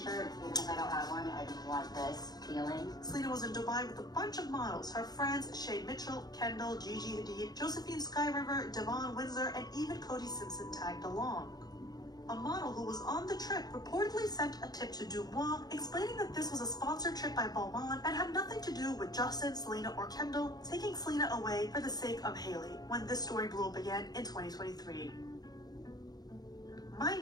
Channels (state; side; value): late; right; 0.19 ms